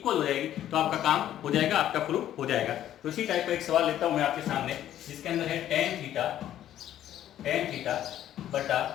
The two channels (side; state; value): right; quieter; 11.8 dB